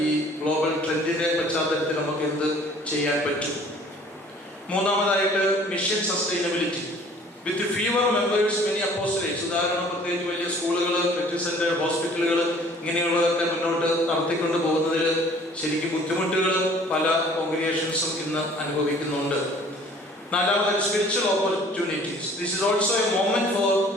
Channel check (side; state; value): both; normal; correlation 0.52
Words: ഈ ഗ്ലോബൽ ട്രെൻഡിന്റെ പശ്ചാത്തലത്തിൽ നമുക്ക് എന്ത് ചെയ്യാൻ പറ്റും. മൂന്നാമതായിട്ട് മിഷൻ സസ്റ്റൈനബിലിറ്റി. വിത്ത് ഫീവർ മെമ്പേഴ്സ് മെനി അപ്പോസ്റ്റലേറ്റ്സ്. ഉദാഹരണം പ്രത്യേകിച്ച് വലിയ സ്കൂളുകൾ, മെഡിക്കൽ സെന്റർ, ഹോസ്പിറ്റലുകൾ ഇങ്ങനെയുള്ളതൊക്കെ മുന്നോട്ട് നടത്തിക്കൊണ്ട് പോകുന്നതിൽ ശരിക്കും ബുദ്ധിമുട്ടുകൾ പല കോൺഗ്രിഗേഷൻസും ഇന്ന് അനുഭവിക്കുന്നുണ്ട്. നാലാമത് spiritual opportunities. This is also a moment for